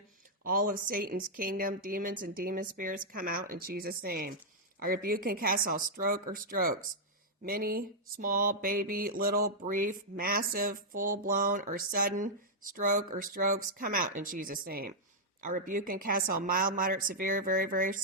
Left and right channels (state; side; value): normal; both; correlation -0.06